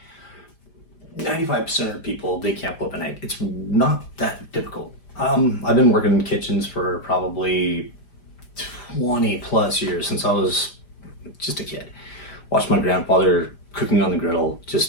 95% of people, they can't flip an egg. It's not that difficult. I've been working in kitchens for probably 20 plus years, since I was just a kid. Watched my grandfather cooking on the griddle,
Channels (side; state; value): right; late; 5.0 ms